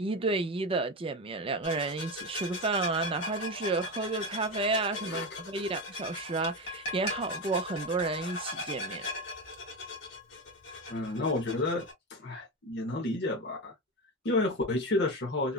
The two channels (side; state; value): both; normal; correlation 0.18